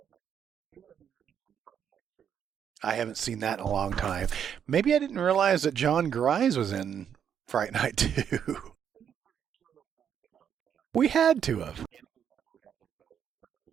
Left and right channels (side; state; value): left; quieter; 8.4 dB